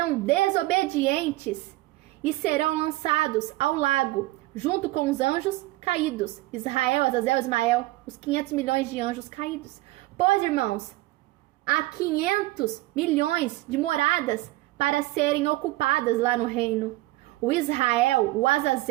desobedientes e serão lançados ao lago, junto com os anjos caídos. Israel, Azazel, Ismael, os 500 milhões de anjos caídos. Pois, irmãos, há 500 milhões de moradas para serem ocupadas lá no reino. O Israel, o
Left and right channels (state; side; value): quieter; left; 18.7 dB